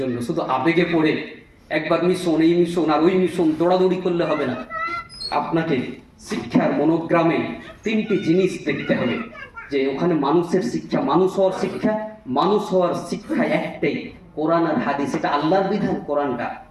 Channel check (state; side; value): identical; both; correlation 1.00